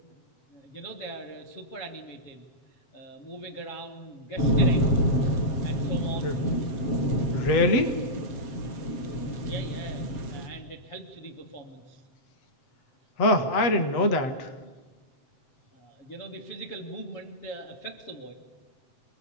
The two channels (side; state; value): right; late; 7.7 ms